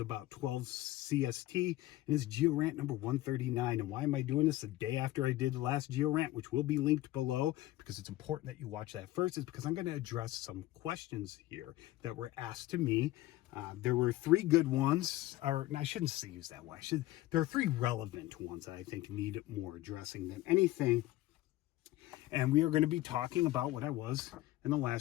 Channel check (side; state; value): right; quieter; 16.5 dB